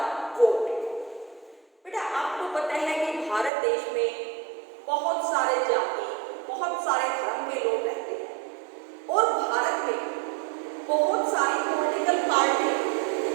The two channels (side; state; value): left; drops out; at 3.5 s